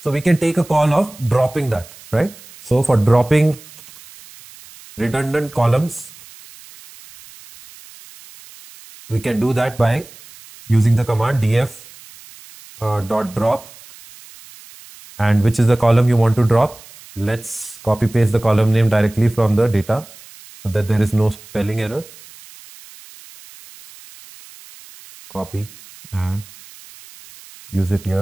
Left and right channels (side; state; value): right; noise; hiss, 21 dB below the sound